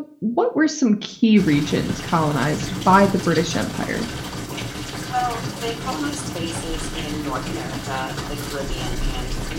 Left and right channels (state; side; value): identical; both; correlation 1.00